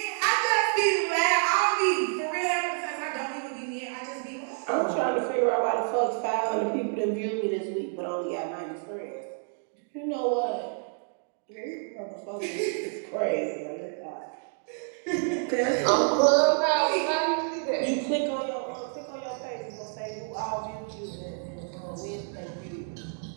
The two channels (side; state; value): left; silent; 56 dB below the other